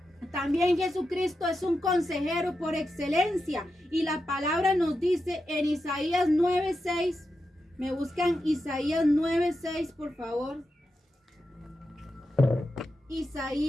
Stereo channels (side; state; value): both; normal; correlation 0.89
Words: también Jesucristo es un consejero por excelencia y la palabra nos dice en Isaías 9:6. Me buscan Isaías 9:6, por favor.